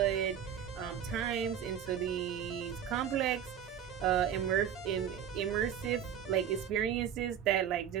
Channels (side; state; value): left; quieter; 9.2 dB